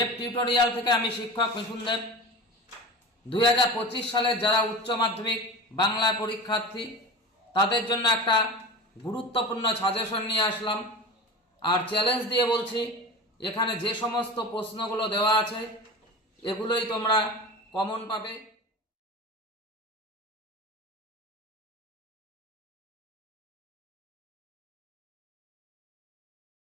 tutorial থেকে আমি শিক্ষক মিঠুন দেব। 2025 সালে যারা উচ্চ মাধ্যমিক বাংলা পরীক্ষার্থী তাদের জন্য একটা গুরুত্বপূর্ণ সাজেশন নিয়ে আসলাম। আর চ্যালেঞ্জ দিয়ে বলছি, এখানে যে সমস্ত প্রশ্নগুলো দেওয়া আছে এগুলোই তোমরা কমন পাবে।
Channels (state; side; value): normal; both; correlation 0.31